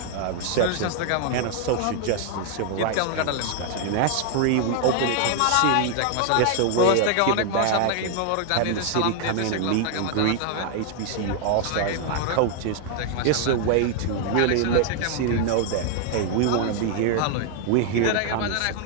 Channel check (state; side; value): different; both; correlation 0.00